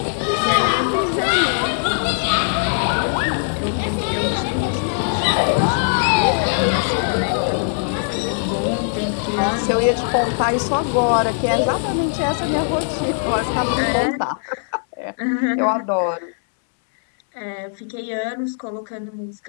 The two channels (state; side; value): silent; right; 64 dB below the other